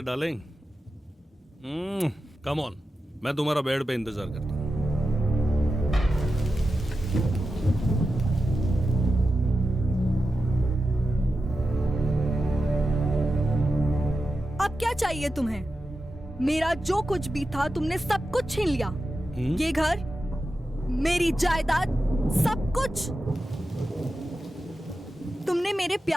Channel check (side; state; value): both; normal; correlation 0.91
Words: डार्लिंग। कम ऑन, मैं तुम्हारा बेड पे इंतजार करता हूं। अब क्या चाहिए तुम्हें? मेरा जो कुछ भी था तुमने सब कुछ छीन लिया। ये घर, मेरी जायदाद, सब कुछ। तुमने मेरे